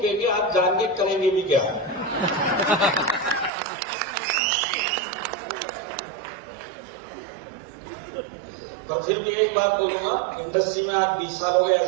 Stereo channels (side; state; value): left; drops out; at 3.5 s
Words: आप जान के करेंगे भी क्या। पर फिर भी एक बात बोलूंगा, इंडस्ट्री में आज 20 साल हो गए एज